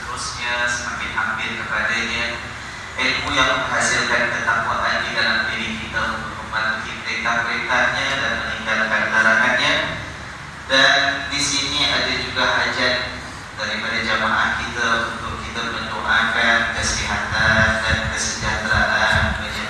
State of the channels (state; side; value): identical; both; correlation 1.00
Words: semakin hampir kepadanya, ilmu yang menghasilkan ketakwaan di dalam diri kita untuk mematuhi perintah-perintahnya dan meninggalkan larangannya. Dan di sini ada juga hajat daripada jamaah kita untuk kita mendoakan kesihatan dan kesejahteraan